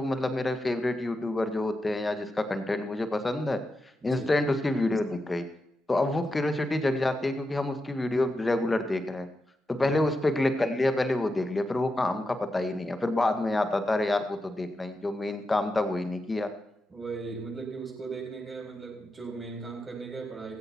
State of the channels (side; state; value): both; normal; correlation 0.88